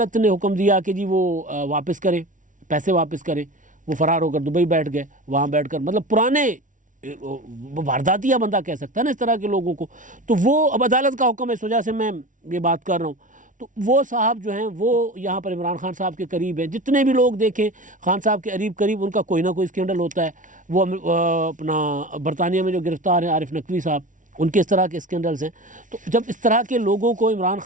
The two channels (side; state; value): left; late; 0.37 ms